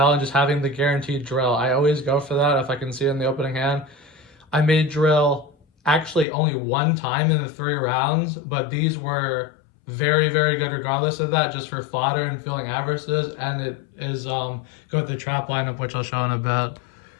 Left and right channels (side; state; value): right; drops out; at 6.2 s